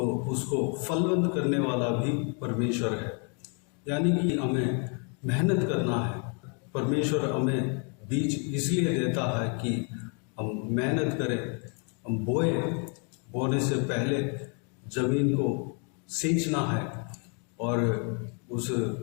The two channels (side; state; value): right; quieter; 38.2 dB